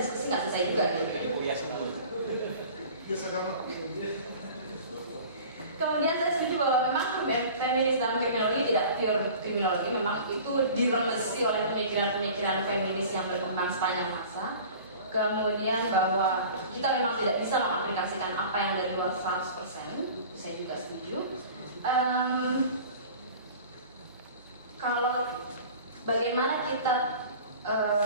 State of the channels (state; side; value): inverted; both; correlation -0.42